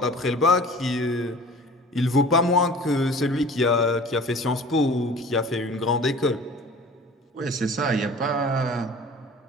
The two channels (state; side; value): normal; both; correlation 0.43